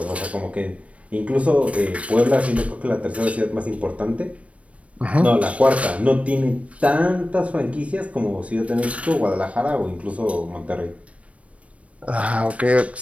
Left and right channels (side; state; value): left; late; 0.064 ms